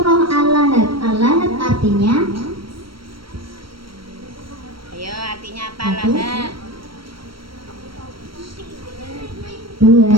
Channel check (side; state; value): left; late; 0.74 ms